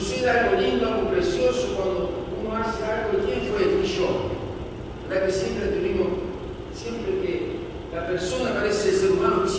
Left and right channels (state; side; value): identical; both; correlation 1.00